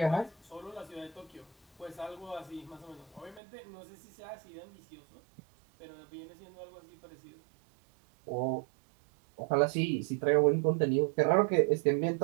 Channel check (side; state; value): left; drops out; at 3.4 s